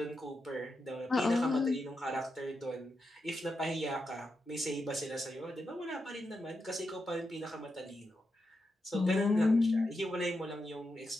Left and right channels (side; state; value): both; normal; correlation 0.86